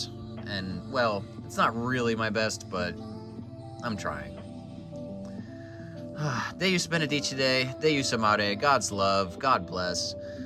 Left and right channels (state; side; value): identical; both; correlation 1.00